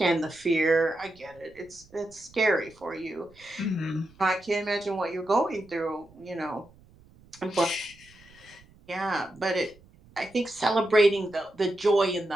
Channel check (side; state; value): right; noise; rumble, 26 dB below the sound